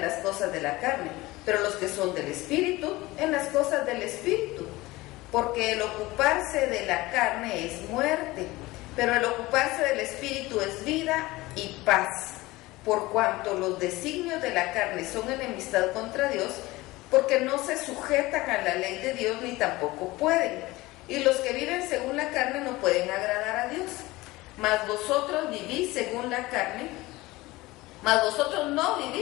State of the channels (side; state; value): right; quieter; 19.9 dB